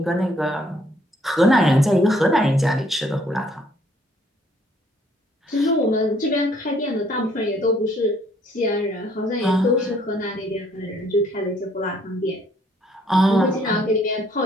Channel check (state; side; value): normal; both; correlation 0.64